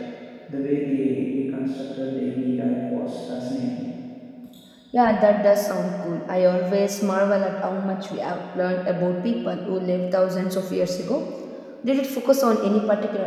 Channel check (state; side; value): identical; both; correlation 1.00